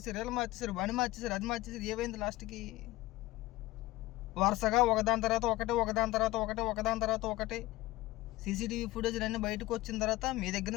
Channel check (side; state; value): right; quieter; 18.2 dB